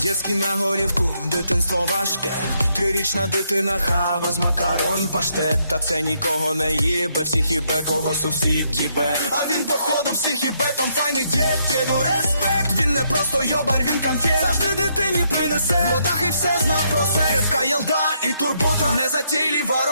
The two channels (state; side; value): inverted; both; correlation -0.75